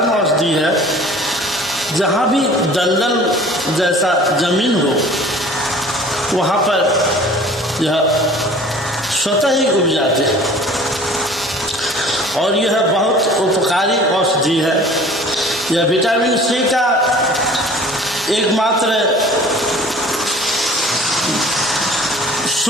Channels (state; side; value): normal; both; correlation 0.47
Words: औषधि है। जहाँ भी दलदल जैसा जमीन हो वहाँ पर यह स्वतः ही उग जाते हैं और यह बहुत उपकारी औषधि है। यह विटामिन सी का एकमात्र